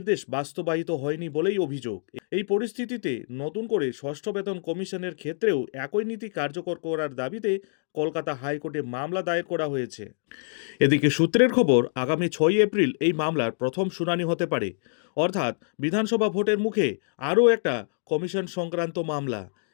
বাস্তবায়িত হয়নি বলেই অভিযোগ। এই পরিস্থিতিতে নতুন করে ষষ্ঠ বেতন কমিশনের ক্ষেত্রেও একই নীতি কার্যকর করার দাবিতে কলকাতা হাইকোর্টে মামলা দায়ের করা হয়েছে। এদিকে সূত্রের খবর, আগামী 6 এপ্রিল এই মামলার প্রথম শুনানি হতে পারে, অর্থাৎ বিধানসভা ভোটের মুখে আরও একটা কমিশন সংক্রান্ত মামলা।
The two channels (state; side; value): silent; right; digital silence